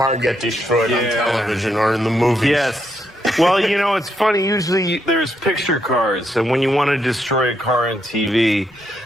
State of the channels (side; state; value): both; normal; correlation 0.78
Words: get destroyed on television or in the movies. Yes. Well, you know, it's funny. Usually there's picture cars, and when you want to destroy a car on TV,